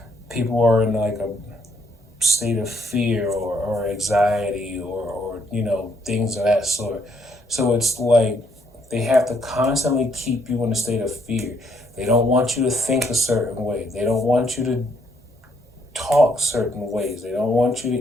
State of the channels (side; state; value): both; normal; correlation 0.71